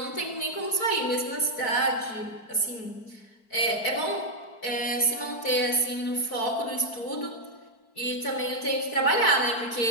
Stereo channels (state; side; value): late; right; 4.6 ms